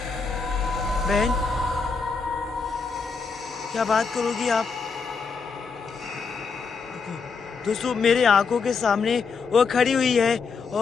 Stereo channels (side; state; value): right; quieter; 5.1 dB